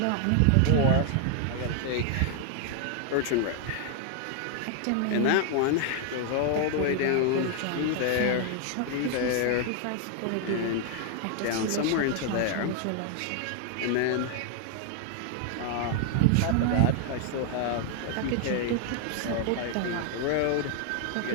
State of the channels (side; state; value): both; different; correlation 0.00